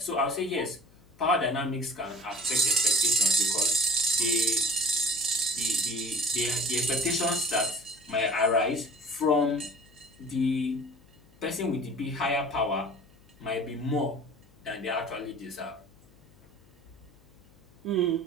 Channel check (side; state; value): left; noise; hum, 28 dB below the sound